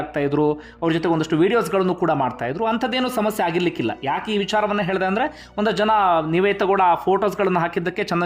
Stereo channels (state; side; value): identical; both; correlation 1.00